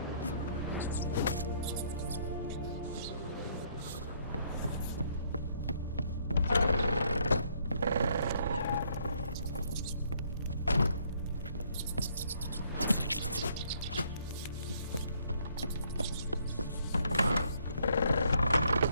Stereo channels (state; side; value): inverted; both; correlation -0.67